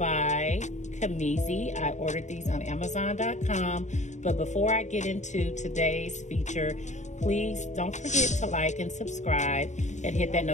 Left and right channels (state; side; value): late; right; 0.34 ms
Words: Kamizi. I ordered these on Amazon.com, but before I get into today's feature, please don't forget to like and subscribe and hit that